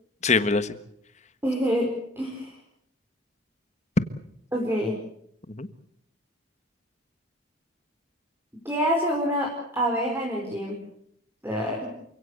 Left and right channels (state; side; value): normal; both; correlation 0.42